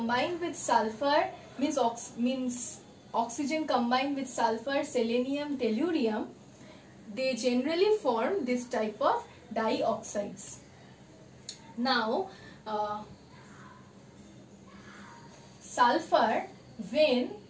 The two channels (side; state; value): both; identical; correlation 1.00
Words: with sulfur means oxygen combined with sulfur, selenium, tellurium, they generally form this type of dioxides. Now, sulfur when